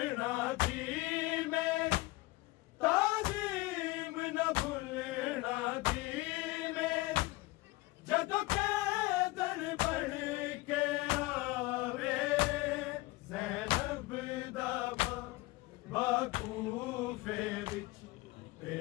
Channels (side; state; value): right; quieter; 21.1 dB